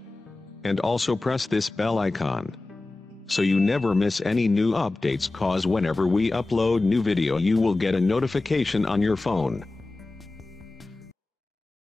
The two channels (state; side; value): quieter; right; 3.1 dB